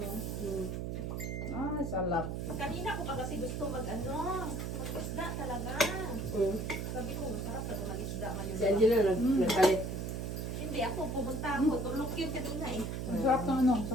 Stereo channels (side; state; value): right; noise; hum, 3 dB below the sound